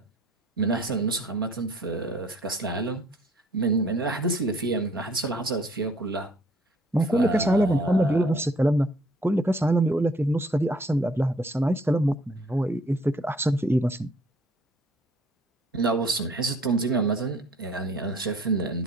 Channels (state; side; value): normal; both; correlation 0.59